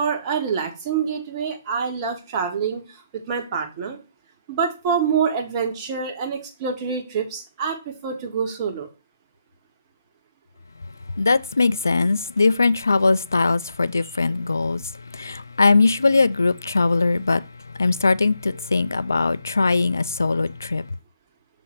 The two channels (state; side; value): inverted; both; correlation -0.81